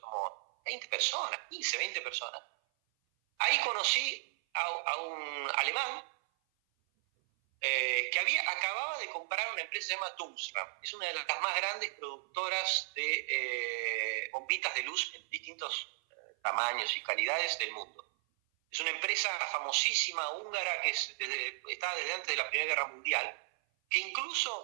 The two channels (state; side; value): silent; left; 54 dB below the other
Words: como 20 personas, 15, 20 personas. Ahí conocí a un alemán que acababa de comprar una empresa que se llama Tungsram. Es una de las más grandes productoras de bombitas de luz en distintos tamaños y calidades del mundo. Es una empresa famosísima húngara que está desde antes de la Primera Guerra Mundial, que